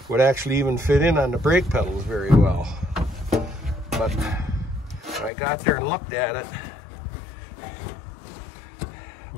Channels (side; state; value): right; drops out; at 5.3 s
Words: would actually even fit in on the brake pedals very well. But I got there and looked at it.